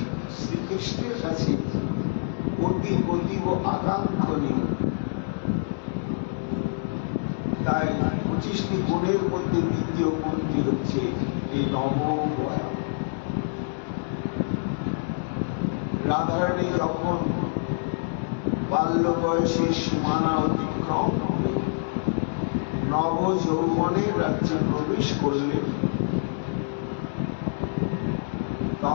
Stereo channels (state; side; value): silent; right; digital silence